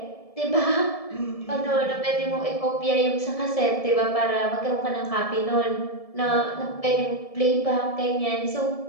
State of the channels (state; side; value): late; right; 1.7 ms